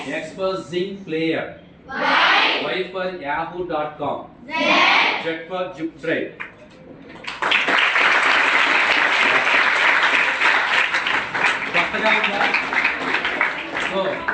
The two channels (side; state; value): both; identical; correlation 1.00